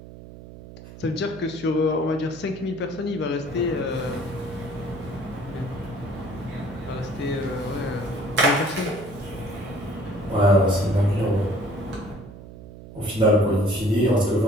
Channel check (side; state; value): right; noise; hum, 16 dB below the sound